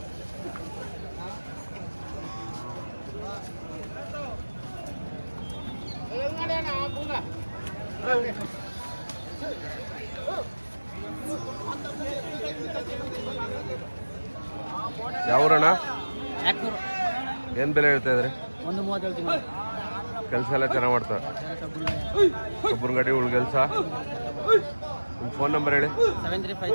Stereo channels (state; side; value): inverted; both; correlation -1.00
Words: ಯಾವೂರಣ್ಣ? ಏನು ಬೆಲೆ ಹೇಳ್ತಾ ಇದ್ರಿ? 130 ಹೇಳ್ತೀನಿ. ಕೆಲಸ ಎಲ್ಲ ಚೆನ್ನಾಗಿ ಮಾಡ್ತಾರೆ. ಒಬ್ಬರ ಗಾಡಿ ಉಳ್ ಕೆಲಸ. ನಿಮ್ಮ ಫೋನ್ ನಂಬರ್ ಹೇಳಿ.